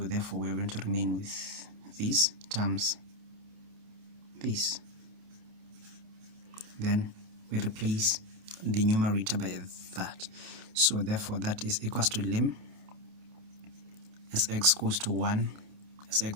we're going to remain with this times this. Then we replace the numerator by that. So therefore that is equals to lim as x goes to 1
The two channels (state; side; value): late; left; 28 ms